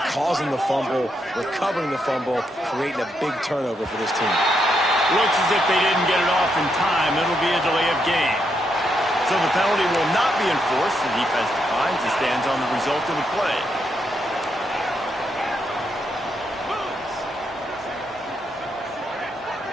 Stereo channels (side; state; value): both; normal; correlation 0.79